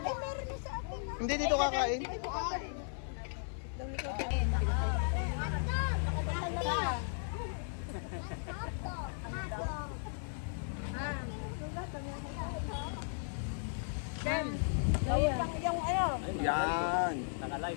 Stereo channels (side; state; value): right; silent; 54 dB below the other